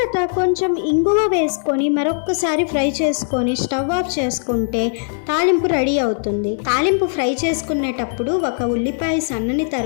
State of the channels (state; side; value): silent; right; 57 dB below the other